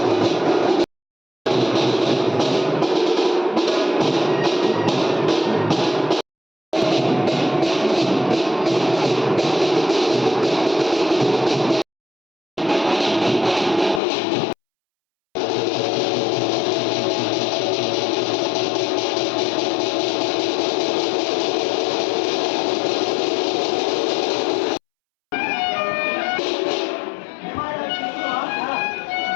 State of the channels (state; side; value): drops out; right; at 14.0 s